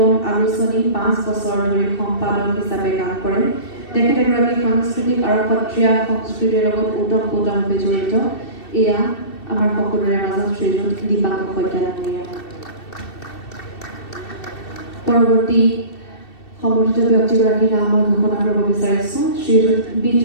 আলোচনী 5 বছৰ ধৰি সম্পাদক হিচাপে কাম কৰে। তেখেত এগৰাকী সাংস্কৃতিক আৰু সত্ৰীয়া সংস্কৃতিৰ লগত ওতঃপ্ৰোতভাৱে জড়িত। এয়া আমাৰ সকলোৰে মাজত শ্ৰীযুত দীপাংকৰ শইকীয়া ডাঙৰীয়া। পৰৱৰ্তী সম্বৰ্ধিত ব্যক্তিগৰাকীৰ নাম মই ঘোষণা কৰিব বিচাৰিছোঁ। শ্ৰীযুত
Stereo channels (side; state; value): right; late; 2.7 ms